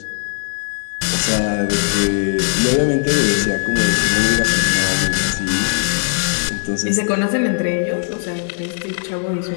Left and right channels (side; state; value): right; silent; digital silence